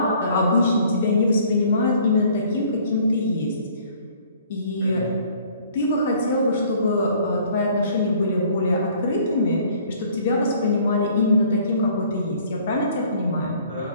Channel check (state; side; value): inverted; both; correlation -0.56